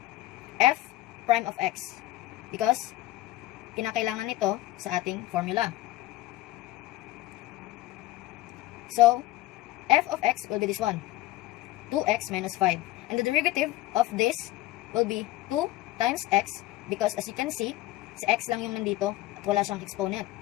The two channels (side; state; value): right; quieter; 16.6 dB